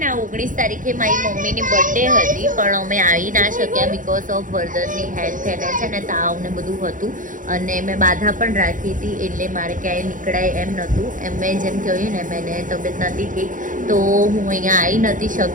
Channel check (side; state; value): left; late; 0.38 ms